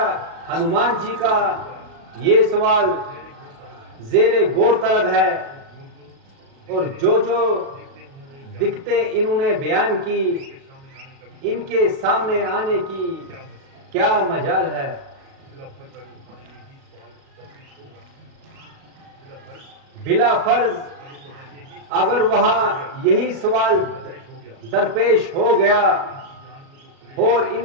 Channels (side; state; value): left; late; 36 ms